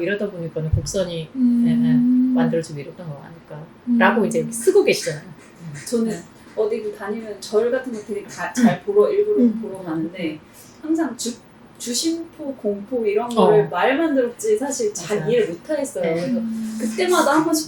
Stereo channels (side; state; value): both; identical; correlation 1.00